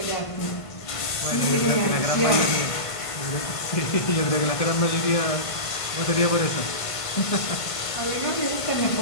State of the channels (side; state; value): right; late; 1.5 ms